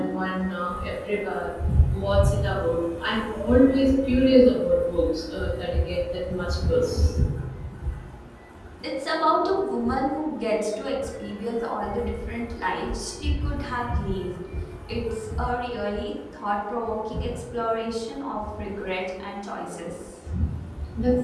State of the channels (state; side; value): identical; both; correlation 1.00